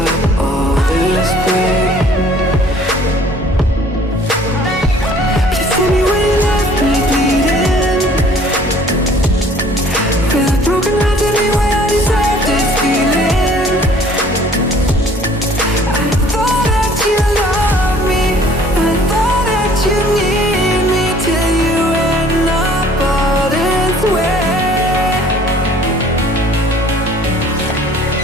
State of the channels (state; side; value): normal; both; correlation 0.55